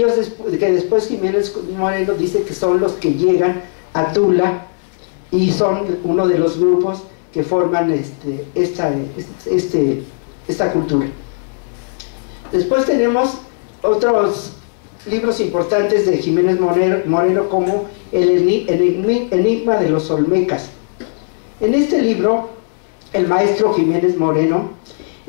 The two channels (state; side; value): silent; right; digital silence